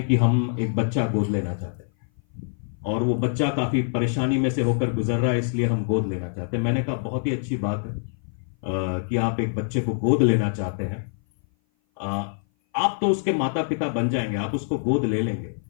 कि हम एक बच्चा गोद लेना चाहते हैं और वो बच्चा काफी परेशानी में से होकर गुजर रहा है, इसलिए हम गोद लेना चाहते हैं। मैंने कहा बहुत ही अच्छी बात है कि आप एक बच्चे को गोद लेना चाहते हैं। आप तो उसके माता पिता बन जाएंगे, आप उसको गोद ले लेंगे,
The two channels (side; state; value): right; silent; 57 dB below the other